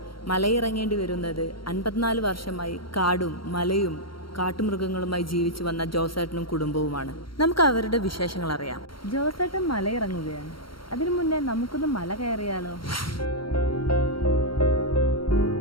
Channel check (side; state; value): right; late; 0.74 ms